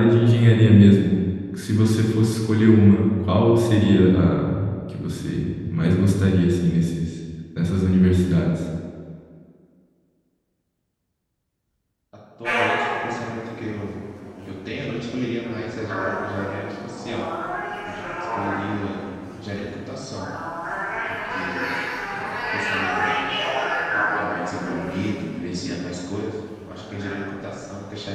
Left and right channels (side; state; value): both; identical; correlation 1.00